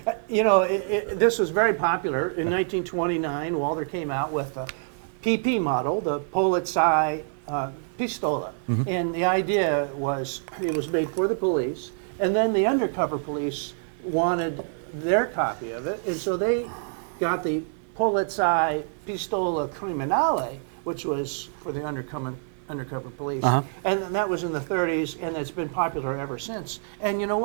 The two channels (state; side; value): silent; left; 57 dB below the other